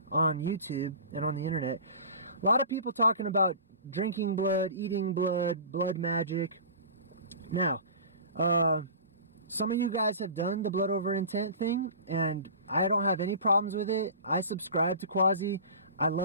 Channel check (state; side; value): inverted; both; correlation -0.37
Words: YouTube and on the internet. A lot of people talking about drinking blood, eating blood, blood magic. Now, some of you guys have done the blood over intent thing, and I don't have any problems with it. I subscribe to Quasi. I